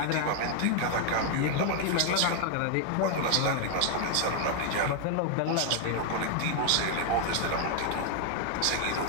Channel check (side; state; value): both; different; correlation 0.00